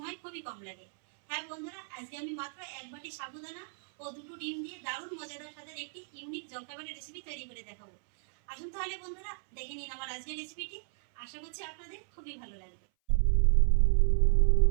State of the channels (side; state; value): left; silent; 56 dB below the other